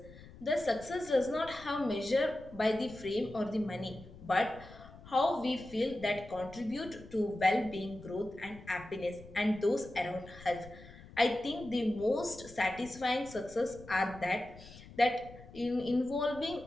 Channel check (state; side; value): noise; left; rumble, 18 dB below the sound